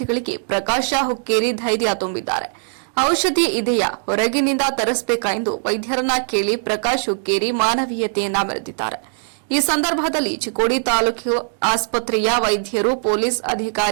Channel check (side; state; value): left; silent; 62 dB below the other